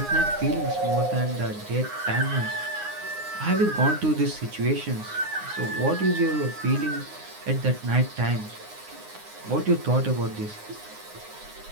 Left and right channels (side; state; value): left; late; 9.7 ms